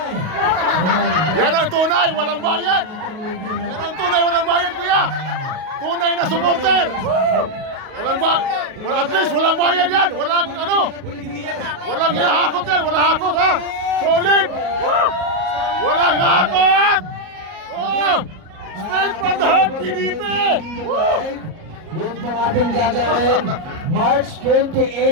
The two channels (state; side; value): late; left; 37 ms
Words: Yan ang tunay, walang bayad. Yan ang tunay, walang bayad, kuya. Tunay na supporter. Walang at least walang bayad yan. Walang ano. Walang hakot yan, walang hakot ha. Solid. Walang hakot. Oh, straight from the heart, PDP. Yun po ating gagawin. March